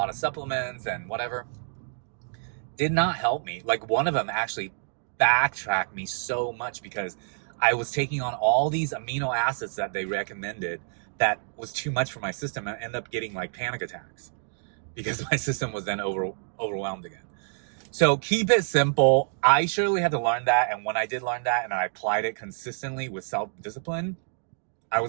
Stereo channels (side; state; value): left; silent; digital silence